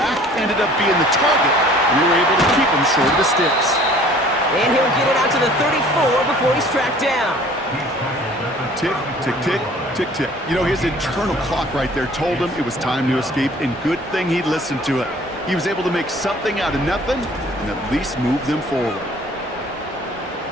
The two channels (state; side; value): normal; both; correlation 0.51